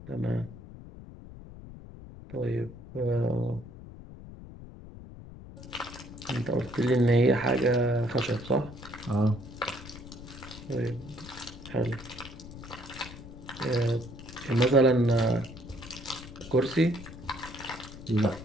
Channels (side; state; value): left; noise; rumble, 15 dB below the sound